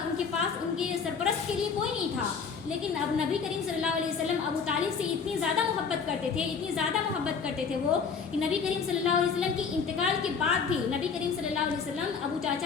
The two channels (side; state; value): right; quieter; 5.8 dB